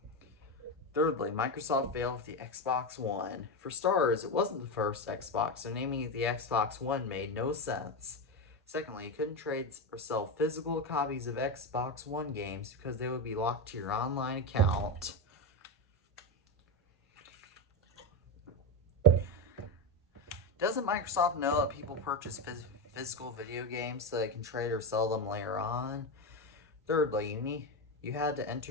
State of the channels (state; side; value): normal; both; correlation 0.14